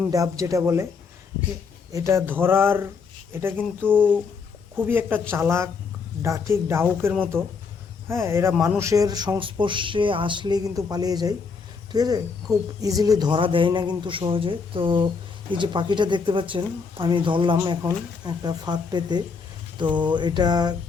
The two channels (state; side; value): quieter; right; 5.2 dB